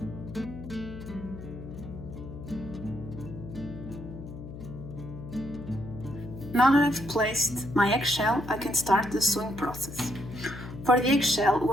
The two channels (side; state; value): left; noise; hum, 11 dB below the sound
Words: Now that I've placed my eggshell, I can start the sewing process. For the eggshell,